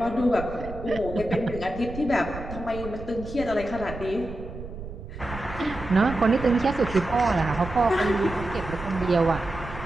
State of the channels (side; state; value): right; noise; rumble, 11 dB below the sound